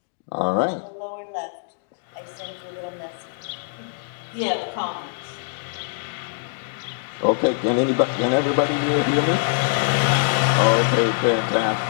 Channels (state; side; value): silent; right; digital silence